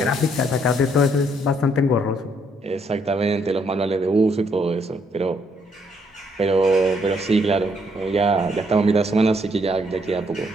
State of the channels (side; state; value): both; normal; correlation 0.71